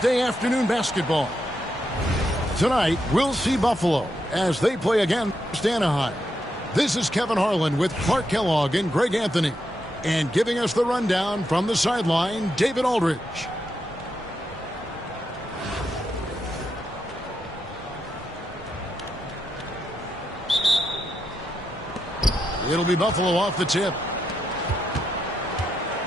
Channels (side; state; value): both; normal; correlation 0.83